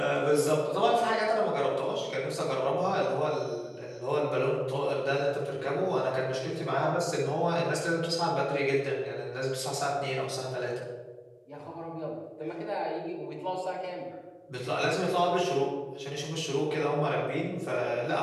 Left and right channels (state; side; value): identical; both; correlation 1.00